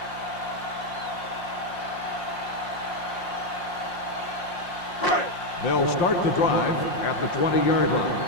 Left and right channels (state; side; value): late; right; 5.6 ms